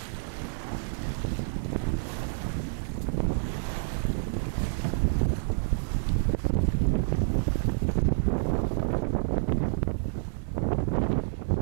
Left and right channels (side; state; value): left; silent; 58 dB below the other